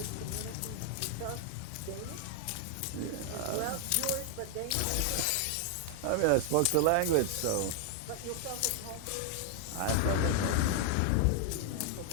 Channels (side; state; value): both; different; correlation 0.00